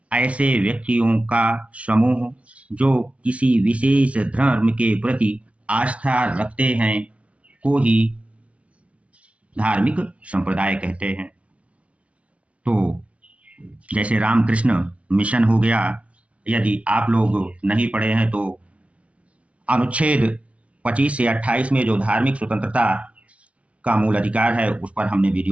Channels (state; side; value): late; left; 0.063 ms